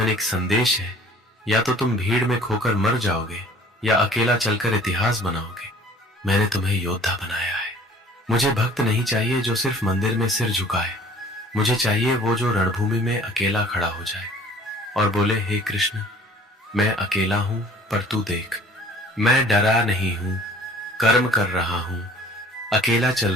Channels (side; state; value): both; normal; correlation 0.51